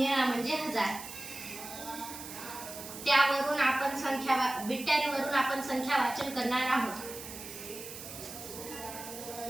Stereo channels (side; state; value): right; noise; hiss, 11 dB below the sound